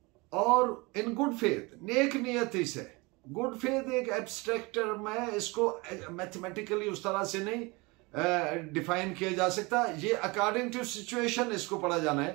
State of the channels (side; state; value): left; quieter; 25.7 dB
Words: और इन गुड फेथ, नेक नियति से। गुड फेथ एक एब्स्ट्रैक्ट टर्म है, इसको मैथमेटिकली उस तरह से नहीं डिफाइन किया जा सकता। ये अकॉर्डिंग टू सिचुएशन इसको पढ़ा जाना